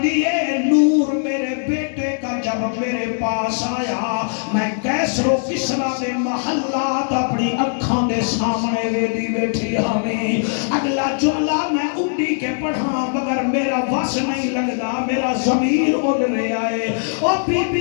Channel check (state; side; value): silent; right; digital silence